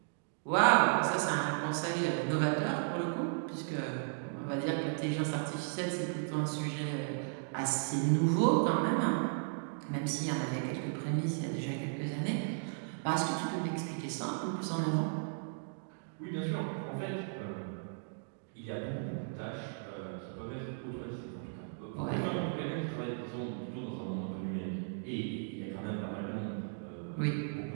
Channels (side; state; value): left; silent; digital silence